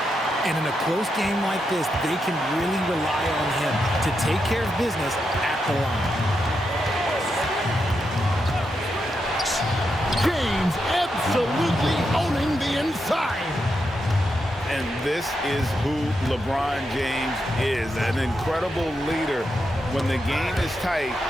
And in a close game like this, they can really rely on him to take care of business at the line. James absolutely owning the inside. And this is who LeBron James is, an incredible leader. When the game is tight,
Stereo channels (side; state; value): both; normal; correlation 0.84